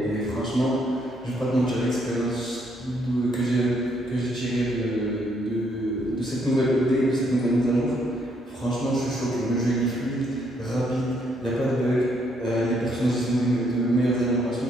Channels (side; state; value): both; normal; correlation 0.72